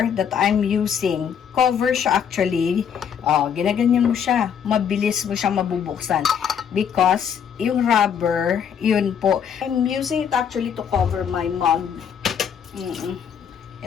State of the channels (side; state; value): right; quieter; 7.9 dB